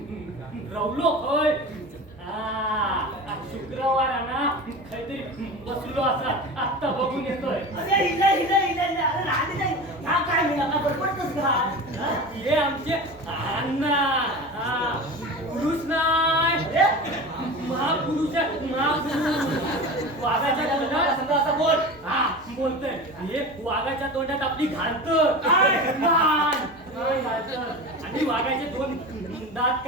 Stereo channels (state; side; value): normal; both; correlation 0.31